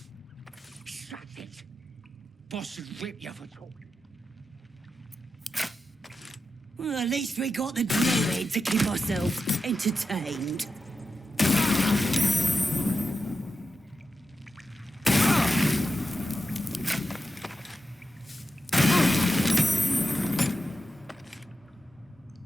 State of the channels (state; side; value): normal; both; correlation 0.90